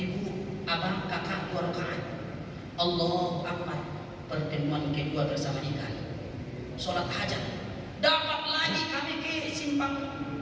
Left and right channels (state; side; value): identical; both; correlation 1.00